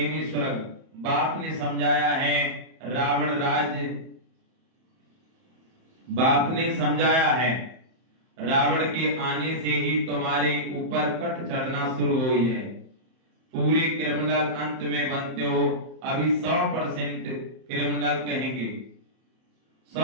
स्वर्ग। बाप ने समझाया है रावण राज्य, बाप ने समझाया है रावण के आने से ही तुम्हारे ऊपर कट चढ़ना शुरू हुई है। पूरे क्रिमिनल अंत में बनते हो। अभी 100% क्रिमिनल कहेंगे,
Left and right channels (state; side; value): late; left; 31 ms